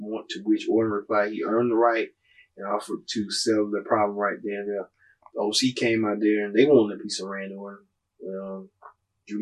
to which Orton replied he earned the right and offered to settle the problem right there and there. The OC came out there and they wanted a piece of Randy Orton. Drew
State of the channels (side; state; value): both; identical; correlation 1.00